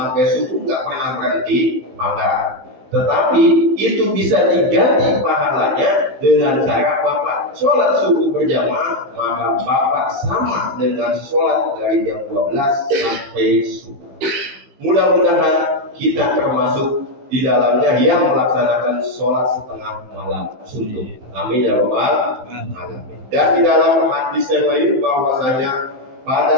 subuh nggak pernah berhenti, maka tetapi itu bisa diganti pahalanya dengan cara bapak sholat subuh berjamaah, maka bapak sama dengan sholat dari jam 12 sampai subuh. Mudah-mudahan kita termasuk di dalamnya yang melaksanakan sholat setengah malam suntuk. Amin ya rabbal alamin. Dan di dalam hadis yang lain bahwasanya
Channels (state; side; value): late; left; 15 ms